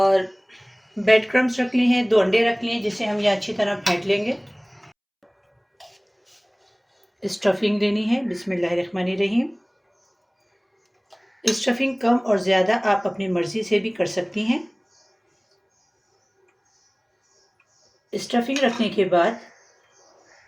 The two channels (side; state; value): both; identical; correlation 1.00